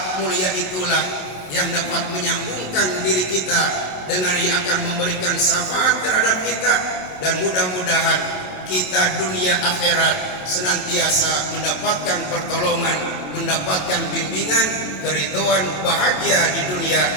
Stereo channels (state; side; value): late; right; 27 ms